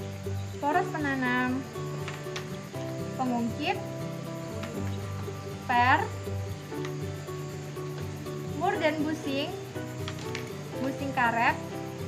poros penanam, pengungkit, per, mur dan busing karet,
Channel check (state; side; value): identical; both; correlation 1.00